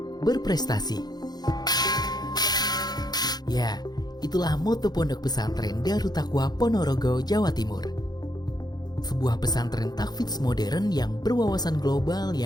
berprestasi. Ya, itulah moto Pondok Pesantren Darut Taqwa Ponorogo, Jawa Timur. Sebuah pesantren tahfidz modern yang berwawasan global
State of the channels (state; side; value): late; right; 0.19 ms